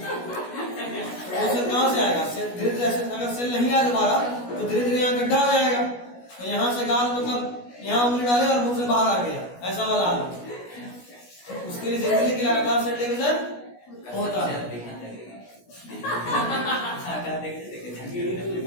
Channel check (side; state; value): right; late; 16 ms